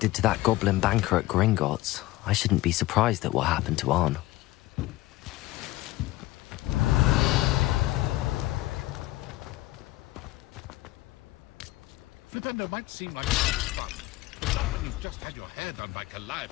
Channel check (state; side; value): quieter; right; 17.6 dB